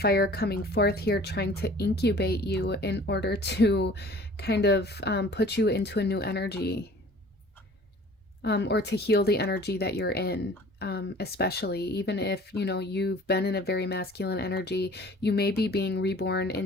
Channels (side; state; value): both; normal; correlation 0.49